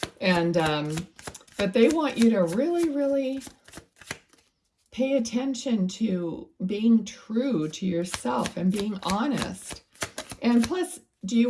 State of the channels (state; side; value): identical; both; correlation 1.00